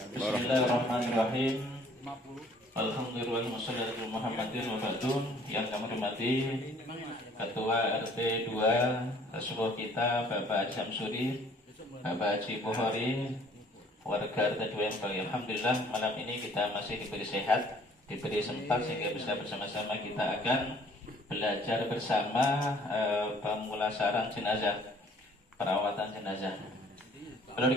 Alhamdulillah wassalatu Muhammadin wa ba'dun. Yang kami hormati Ketua RT 2 Rasulullah kita Bapak Haji Samsuri, Bapak Haji Bukhari, warga RT 2 yang baik. Alhamdulillah malam ini kita masih diberi sehat, diberi sempat sehingga bisa bersama-sama kita akan belajar bersama pemulasaran jenazah, perawatan jenazah. Perlu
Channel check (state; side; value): normal; both; correlation 0.57